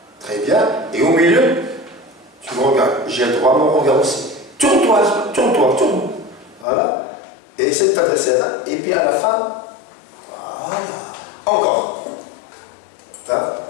très bien, et au milieu, tu me regardes, j'ai le droit à mon regard aussi. Tourne-toi, tourne. Voilà, et essaie de t'adresser là, et puis à la fin, voilà, encore. Là,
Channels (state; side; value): drops out; right; at 6.7 s